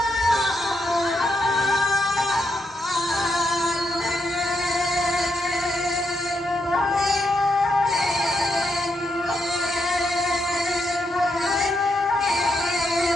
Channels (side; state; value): both; normal; correlation 0.80